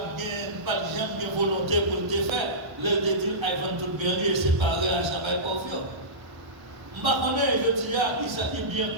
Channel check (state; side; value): late; left; 1.3 ms